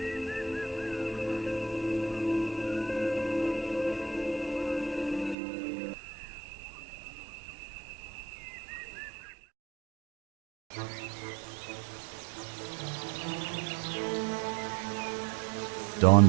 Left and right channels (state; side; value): drops out; left; at 5.4 s